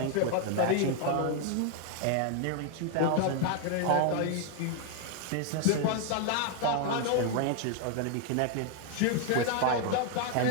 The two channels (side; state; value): both; different; correlation 0.00